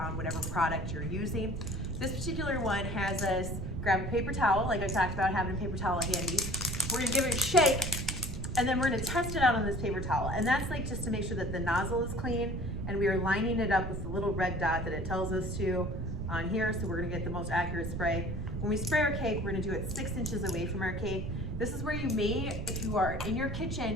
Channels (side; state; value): right; noise; rumble, 5 dB below the sound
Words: whatever product you're using. This particular one has us grab a paper towel, like I talked about having a paper towel handy. We're gonna give it a shake, and then we're gonna test it out on this paper towel. And that's like just to make sure that the nozzle is clean, and we are lining it up with the little red dot that it tells us to on here, so we're gonna get the most accurate spray. When we spray our cake, we're gonna do it 6 inches away from our cake. This is where you may, if you are in your